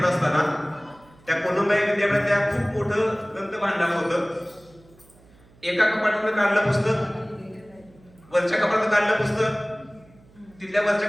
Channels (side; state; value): right; noise; hum, 27 dB below the sound